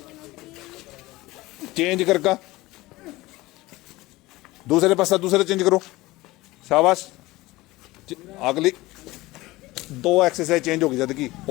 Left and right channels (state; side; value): quieter; right; 19.5 dB